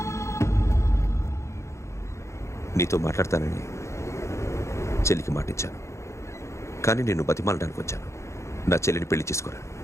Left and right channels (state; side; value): late; right; 0.14 ms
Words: నీతో మాట్లాడతానని చెల్లికి మాటిచ్చాను, కానీ నేను బతిమాలడానికి వచ్చాను. నా చెల్లిని పెళ్లి చేసుకోరా.